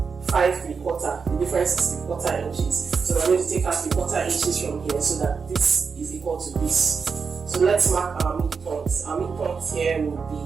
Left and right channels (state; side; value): quieter; left; 5.4 dB